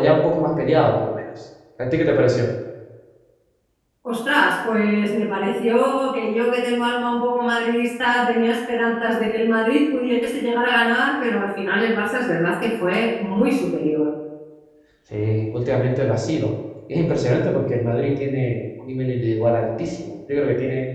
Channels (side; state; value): both; identical; correlation 1.00